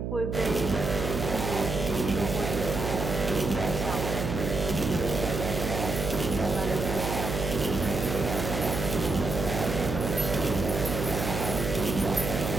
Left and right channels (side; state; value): right; noise; hum, 3 dB below the sound